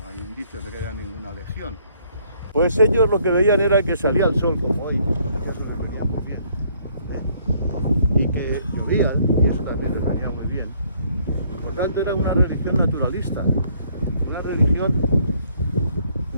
hay indicios de que haya ninguna legión. Pues ellos lo que veían era que salía el sol como hoy, que eso les venía muy bien. Y que llovían, y eso también les venía muy bien. Por tanto era una religión naturalista. Una religión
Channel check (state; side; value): inverted; both; correlation -0.65